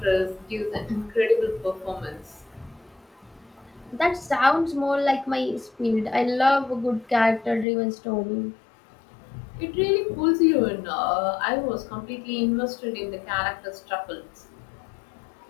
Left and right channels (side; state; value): right; drops out; at 7.7 s